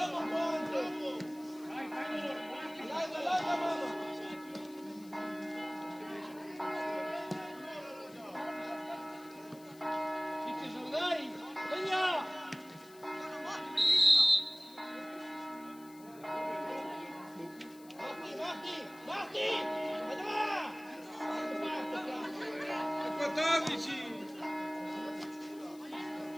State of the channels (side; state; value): left; noise; hiss, 23 dB below the sound